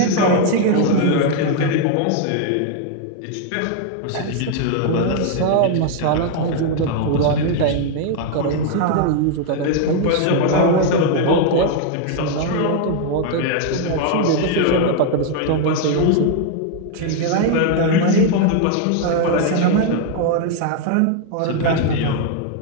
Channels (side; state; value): both; different; correlation 0.00